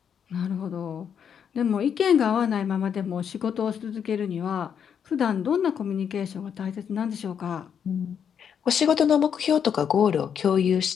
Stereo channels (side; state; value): right; quieter; 7.8 dB